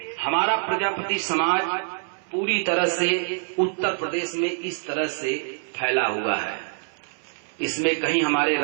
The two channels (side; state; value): left; silent; 62 dB below the other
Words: हमारा प्रजापति समाज पूरी तरह से उत्तर प्रदेश में इस तरह से फैला हुआ है। इसमें कहीं हमारे